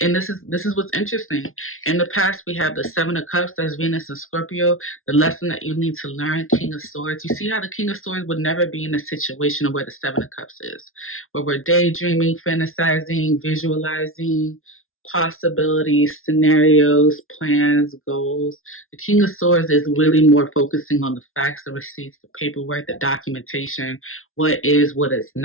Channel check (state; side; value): late; right; 0.61 ms